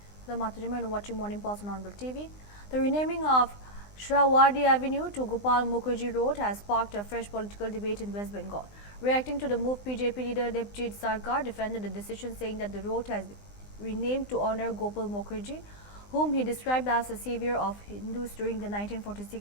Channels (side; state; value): right; late; 20 ms